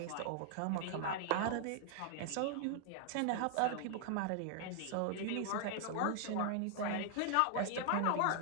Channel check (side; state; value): both; different; correlation 0.00